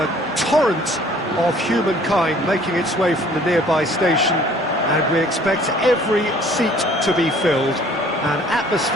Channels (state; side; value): normal; both; correlation 0.55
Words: torrent of humankind making its way from the nearby station, and we expect every seat to be filled. An